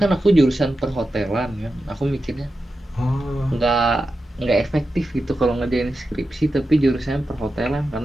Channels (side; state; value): both; normal; correlation 0.91